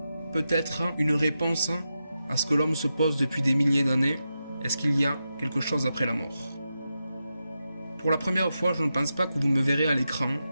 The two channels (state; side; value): inverted; both; correlation -0.89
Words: peut-être une réponse à ce que l'homme se pose depuis des milliers d'années. Est-ce qu'il y a quelque chose après la mort? Pour la première fois, je ne pense pas que vous me verrez à l'écran,